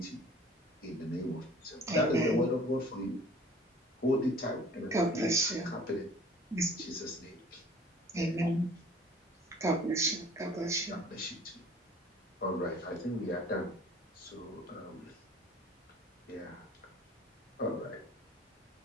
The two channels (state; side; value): normal; both; correlation 0.49